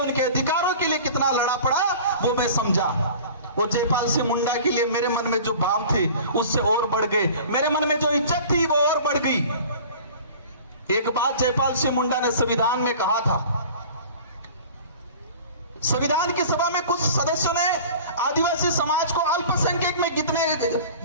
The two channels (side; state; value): both; inverted; correlation -0.42